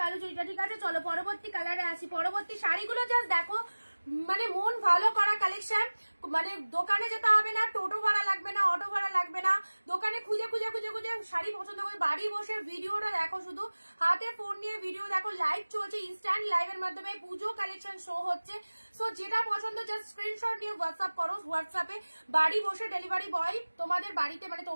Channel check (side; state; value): both; inverted; correlation -1.00